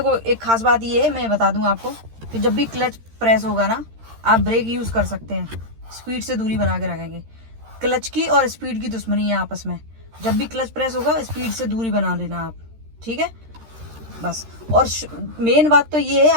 एक खास बात ये है, मैं बता दूं आपको कि जब भी क्लच प्रेस होगा ना आप ब्रेक यूज कर सकते हैं, स्पीड से दूरी बना के रखेंगे। क्लच की और स्पीड की दुश्मनी है आपस में। जब भी क्लच प्रेस होगा स्पीड से दूरी बना लेना आप, ठीक है, बस। और मेन बात तो ये है,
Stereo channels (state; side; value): late; left; 13 ms